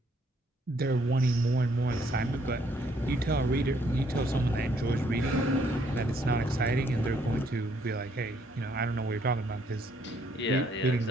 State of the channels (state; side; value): normal; both; correlation 0.68